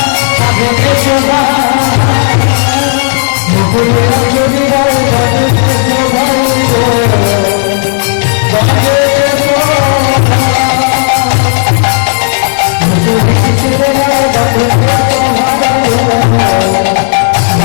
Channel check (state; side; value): silent; right; digital silence